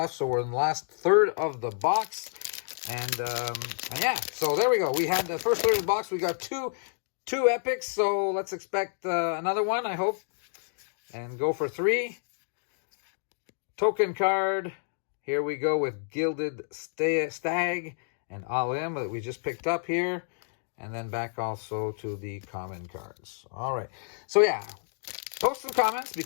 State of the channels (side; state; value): right; silent; digital silence